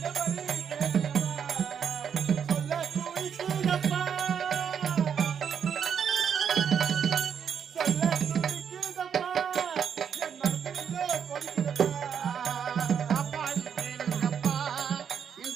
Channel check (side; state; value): left; quieter; 7.6 dB